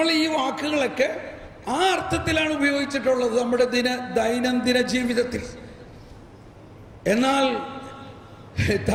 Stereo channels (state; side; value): identical; both; correlation 1.00